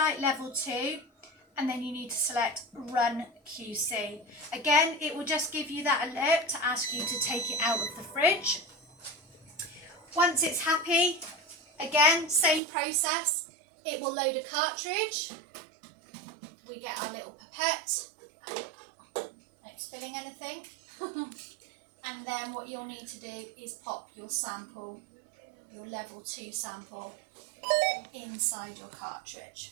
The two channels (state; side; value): drops out; left; at 12.6 s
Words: level 2, and then you need to select run QC. Again, it will just give you that alert to ask you to take it out of the fridge. Once it's happy, again, same process. It will load a cartridge. We get our little pipette. Not spilling anything. And then what you'll need to do is pop your sample, your level 2 sample, inside your cartridge.